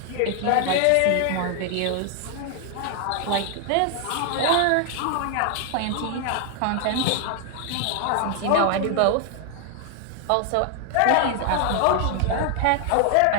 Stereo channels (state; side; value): different; both; correlation 0.00